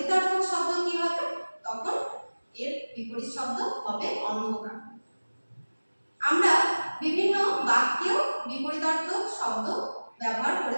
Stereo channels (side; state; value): both; inverted; correlation -1.00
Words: শব্দ কি হবে, তখন এর বিপরীত শব্দ হবে অন্ধকার। আমরা বিভিন্ন বাক্যেও বিপরীতার্থক শব্দ ব্যবহার